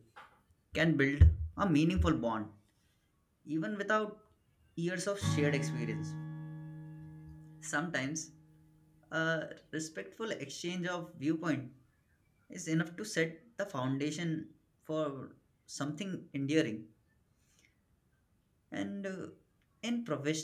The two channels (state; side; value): identical; both; correlation 1.00